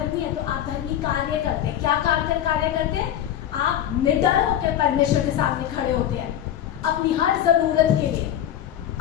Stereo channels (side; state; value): right; quieter; 10.9 dB